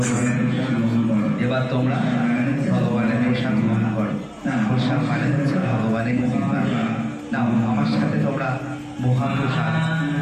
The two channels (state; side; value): identical; both; correlation 1.00